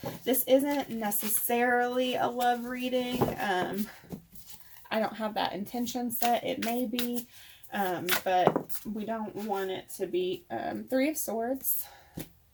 this isn't necessarily a love reading. I don't have that intention set. It may be, but we don't want it to be 3 of Swords.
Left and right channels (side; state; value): both; identical; correlation 1.00